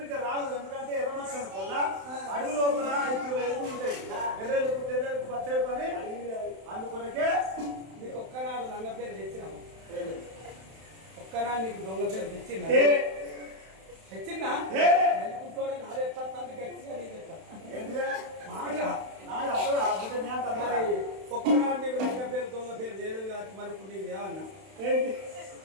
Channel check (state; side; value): late; left; 31 ms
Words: రాదు ఎందుకంటే ఎర్రమచ్చని వల్ల అడుగు లోపల ఇప్పుడు ఎదుగు ఉంటాయి ఎర్రెలకు తెర్రెలకు పచ్చడి పని అందుకొరకే నీకు ఒక్కనాడు లంగ పేరు తెచ్చినాము ఒక్కనాడు నీకు దొంగ పేరు తెచ్చిందా తెచ్చిందా నెలకుంటోడే నాది ఎట్లా గట్టిగా నీకు మరి ఒక్కనాడు నీకు లంగ పేరు దొంగ పేరు చేయలేదు కాబట్టి మరి ఇప్పుడు నీకు ఏమన్నా